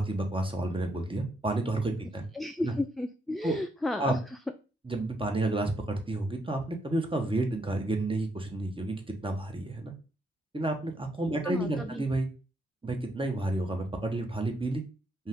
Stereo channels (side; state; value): both; normal; correlation 0.77